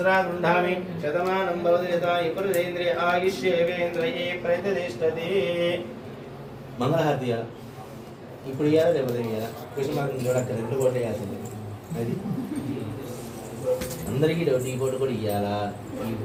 గృహామి శతమానం భవతి యథా పురుషేంద్రియ ఆయుష్యేవేంద్రియే ప్రతిష్టతి మంగళహారతియా ఇప్పుడు ఇవ్వాలా లేకపోతే ఇవ్వాలా కృష్ణమార్గం చూడక్క 2 కోట్లు వేయాల్సింది అది అందరికీ డౌట్ ఈ ఫోటో కూడా ఇవ్వాలా ఈ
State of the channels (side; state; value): both; identical; correlation 1.00